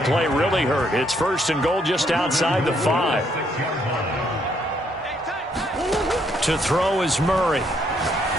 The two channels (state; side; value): normal; both; correlation 0.71